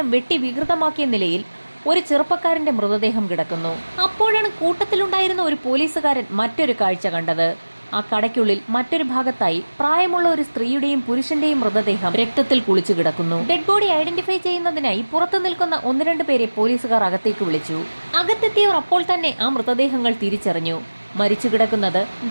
വെട്ടി വികൃതമാക്കിയ നിലയിൽ ഒരു ചെറുപ്പക്കാരന്റെ മൃതദേഹം കിടക്കുന്നു. അപ്പോഴാണ് കൂട്ടത്തിലുണ്ടായിരുന്ന ഒരു പോലീസുകാരൻ മറ്റൊരു കാഴ്ച കണ്ടത്. ആ കടയ്ക്കുള്ളിൽ മറ്റൊരു ഭാഗത്തായി പ്രായമുള്ള ഒരു സ്ത്രീയുടെയും പുരുഷന്റെയും മൃതദേഹം രക്തത്തിൽ കുളിച്ചു കിടക്കുന്നു. ഡെഡ് ബോഡി ഐഡന്റിഫൈ ചെയ്യുന്നതിനായി പുറത്തു നിൽക്കുന്ന 1-2 പേരെ പോലീസുകാർ അകത്തേക്ക് വിളിച്ചു. അകത്തെത്തിയവർ അപ്പോൾ തന്നെ ആ മൃതദേഹങ്ങൾ തിരിച്ചറിഞ്ഞു. മരിച്ചു കിടക്കുന്നത്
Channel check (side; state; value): both; inverted; correlation -1.00